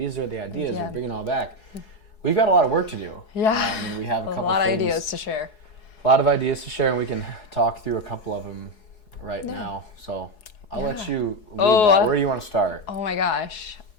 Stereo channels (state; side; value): late; right; 4.7 ms